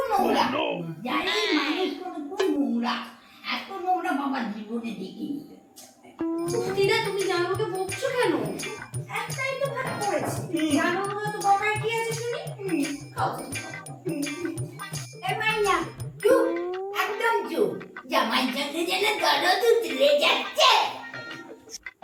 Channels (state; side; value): identical; both; correlation 1.00